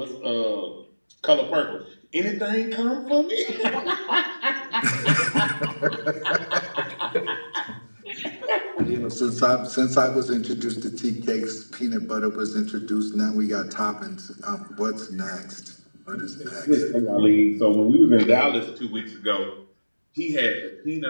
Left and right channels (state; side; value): inverted; both; correlation -1.00